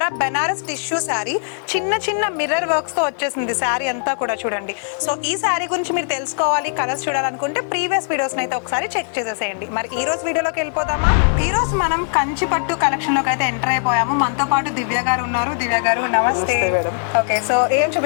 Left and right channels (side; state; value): right; silent; digital silence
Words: బెనారస్ టిష్యూ శారీ, చిన్న చిన్న మిర్రర్ వర్క్స్ తో వచ్చేసింది శారీ అంతా కూడా చూడండి. సో ఈ శారీ గురించి మీరు తెలుసుకోవాలి, కలర్స్ చూడాలనుకుంటే ప్రీవియస్ వీడియోస్ అయితే ఒకసారి చెక్ చేసేసేయండి. మరి ఈ రోజు వీడియోలోకి వెళ్ళిపోదామా? ఈ రోజు మనం కంచి పట్టు కలెక్షన్ లోకి అయితే ఎంటర్ అయిపోయాము. మనతో పాటు దివ్య గారు ఉన్నారు. దివ్య గారు నమస్తే. ఓకే, సో ఏం